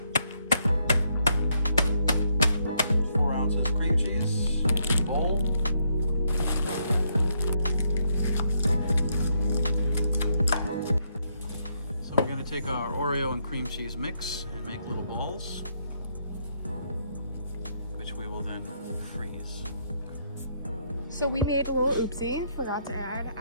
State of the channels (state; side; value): inverted; both; correlation -0.75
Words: 4 ounces cream cheese, bowl. So we're going to take our Oreo and cream cheese mix and make little balls, which we will then freeze. So we made a little oopsie, forgot to add